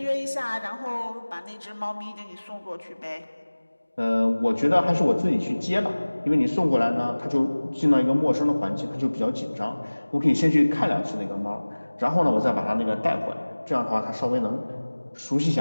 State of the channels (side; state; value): both; inverted; correlation -1.00